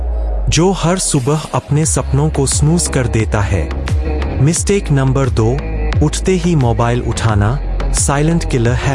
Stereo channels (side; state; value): both; identical; correlation 1.00